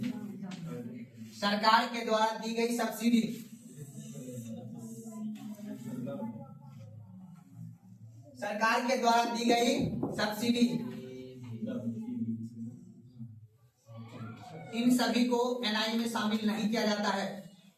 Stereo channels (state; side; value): identical; both; correlation 1.00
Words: सरकार के द्वारा दी गई सब्सिडी, सरकार के द्वारा दी गई सब्सिडी, इन सभी को एनआई में शामिल नहीं किया जाता है,